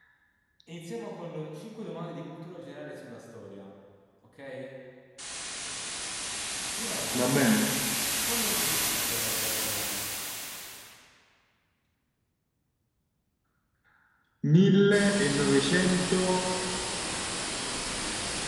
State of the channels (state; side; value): identical; both; correlation 1.00